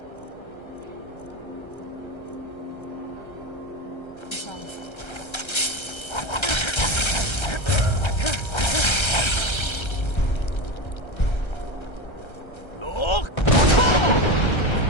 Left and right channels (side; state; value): right; late; 1.3 ms